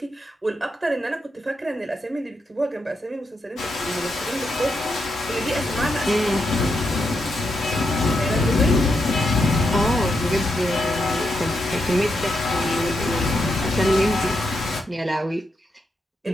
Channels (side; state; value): both; normal; correlation 0.83